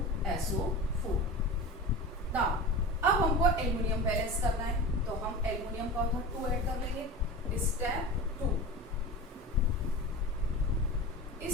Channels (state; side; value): normal; both; correlation 0.30